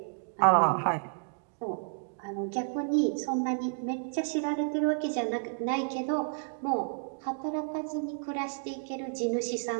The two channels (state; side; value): silent; left; digital silence